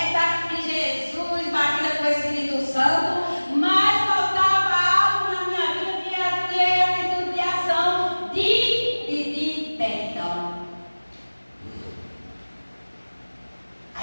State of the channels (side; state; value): both; inverted; correlation -1.00